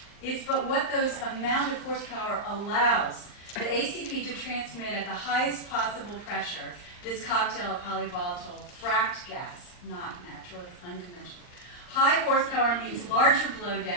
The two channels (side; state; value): right; late; 39 ms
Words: it's but what those amount of horsepower allows the ACP to transmit at the highest possible pressure this cocktail of polyvolatile fracked gas, not natural, it's unconventional. High horsepower means larger